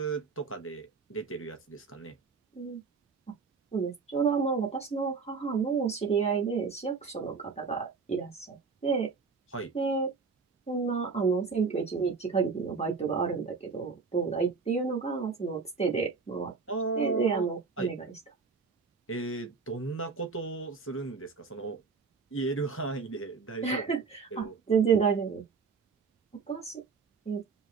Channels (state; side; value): quieter; left; 5.0 dB